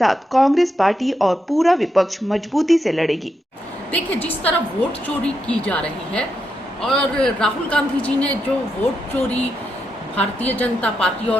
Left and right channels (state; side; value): normal; both; correlation 0.84